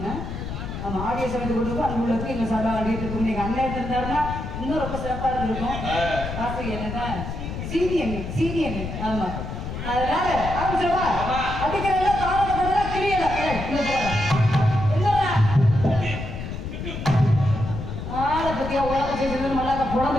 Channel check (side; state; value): left; noise; rumble, 6 dB below the sound